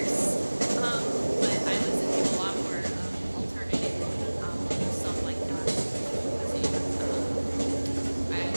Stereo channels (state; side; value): inverted; both; correlation -1.00